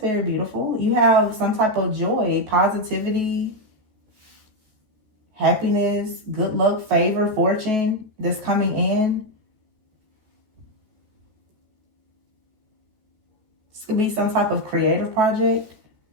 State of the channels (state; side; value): late; left; 14 ms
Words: very beautiful. You have some type of joy, positivity, happiness, good luck, favor, fortune that's coming in. This could be some type of creative project.